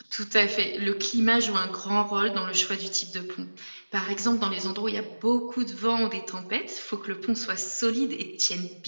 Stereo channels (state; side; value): inverted; both; correlation -1.00